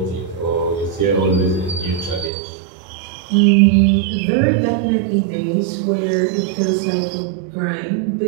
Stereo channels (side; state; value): left; drops out; at 2.3 s